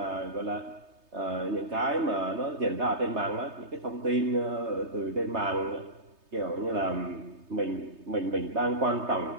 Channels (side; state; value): left; late; 3.2 ms